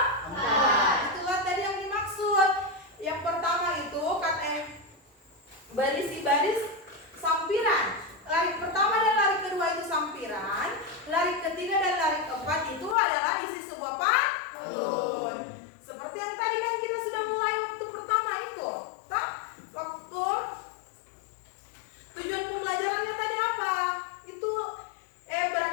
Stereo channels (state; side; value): drops out; right; at 13.0 s